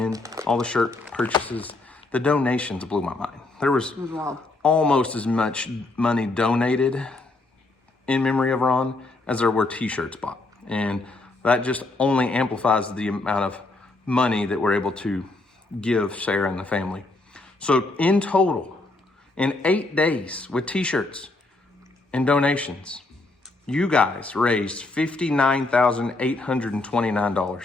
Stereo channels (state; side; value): quieter; right; 3.1 dB